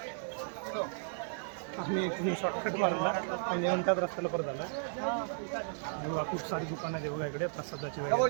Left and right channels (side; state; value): left; silent; digital silence